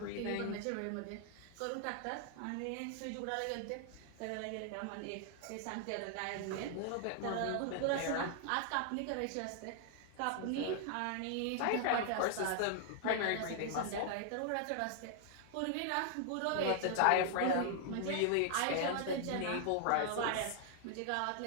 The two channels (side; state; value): both; different; correlation 0.00